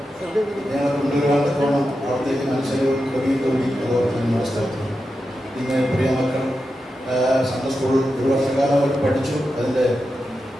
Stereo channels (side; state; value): both; normal; correlation 0.89